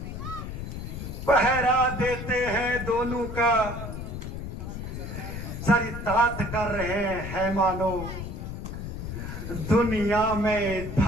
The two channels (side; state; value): left; noise; rumble, 7 dB below the sound